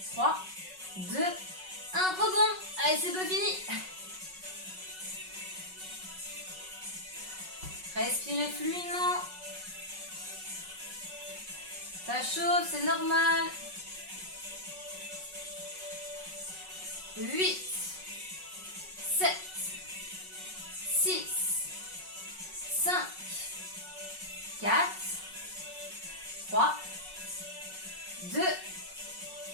3, 2, 1, rebond. Allez, c'est pas fini. Respirez fluidement. Ça chauffe, c'est normal. 8, 7, 6, 5, 4, 3, 2, 1,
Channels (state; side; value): late; left; 5.4 ms